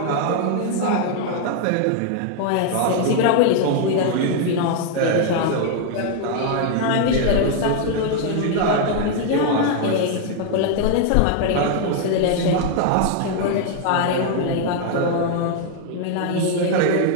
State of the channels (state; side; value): different; both; correlation 0.00